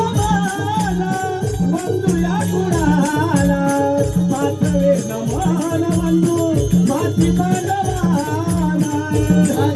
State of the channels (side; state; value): both; identical; correlation 1.00